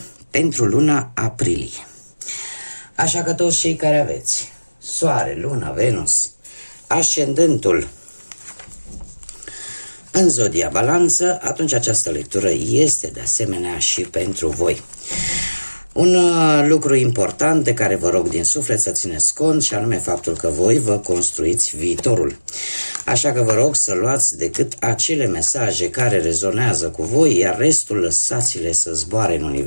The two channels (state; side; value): inverted; both; correlation -1.00